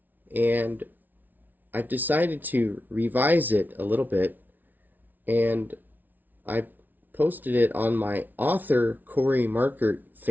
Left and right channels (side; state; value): left; late; 0.083 ms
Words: and I've decided to revise it a little bit, and I posted it on my author Cory Markert